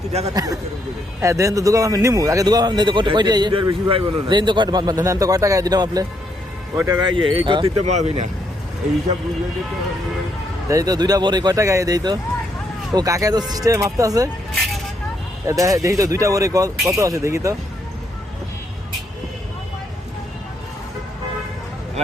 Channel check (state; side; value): normal; both; correlation 0.75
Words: ডাকাতি করতে করে হ্যাঁ দেন তো দোকান আমি নিমু আগে দোকান আমি দেন তো কয়টা এর বেশি ভাই বলো না দেন তো কয়টা দেন তো কয় টাকা দিলাম আপনি? কয় টাকা এই করতে তো মাবি না এই হিসাব বুঝলে তো দেই তো দুইটা বড়ি কয় টাকা দেই তো? ও কাকা তো সিস্টেমে মাপতে আছে। দেখি তো দুইটা বড়ি কত আছে দেখি তো।